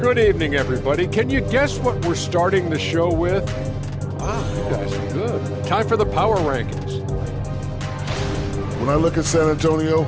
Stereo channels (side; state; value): both; identical; correlation 1.00